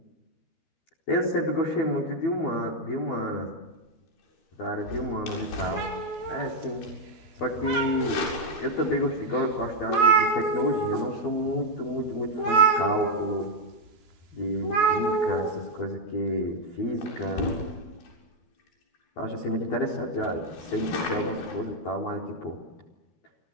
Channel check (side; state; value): right; late; 13 ms